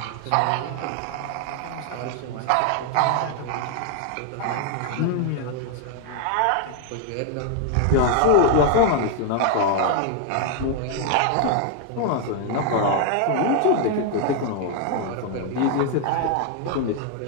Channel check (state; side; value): different; both; correlation 0.00